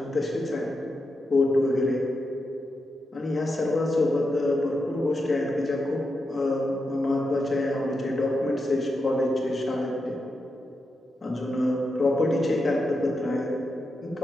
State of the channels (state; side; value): normal; both; correlation 0.86